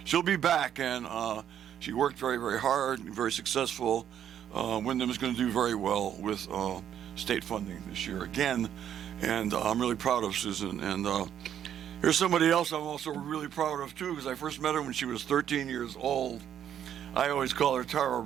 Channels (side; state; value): left; quieter; 9.7 dB